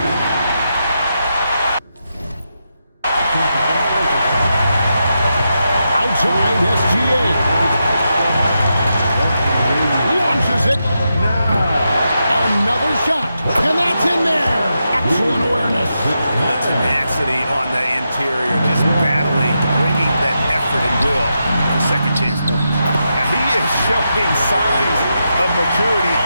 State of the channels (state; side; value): inverted; both; correlation -0.86